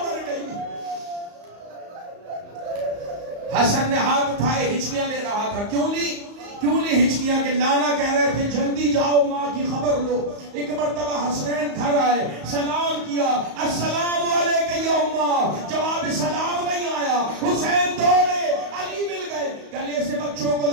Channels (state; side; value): late; left; 35 ms